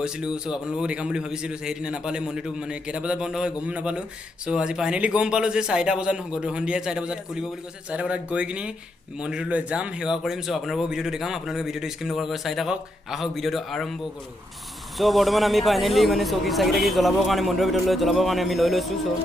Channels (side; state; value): both; normal; correlation 0.80